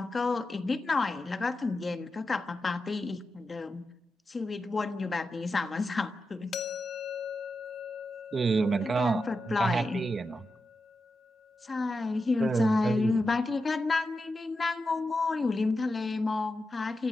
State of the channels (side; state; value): both; normal; correlation 0.89